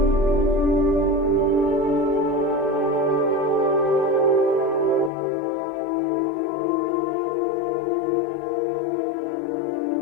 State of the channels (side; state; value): right; drops out; at 5.1 s